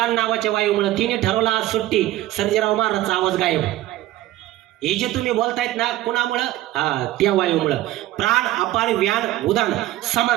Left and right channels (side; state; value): left; quieter; 15.3 dB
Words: नावाच्या वायूमुळे. तिने ठरवलं आज सुट्टी, सर्जेराव महाराजचा आवाज गायब. हे जे तुम्ही बोलतायत ना कुणामुळं? त्या वायूमुळं. प्राण, अपान, व्यान, उदान,